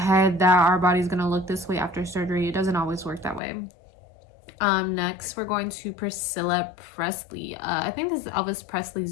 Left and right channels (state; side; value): drops out; right; at 3.4 s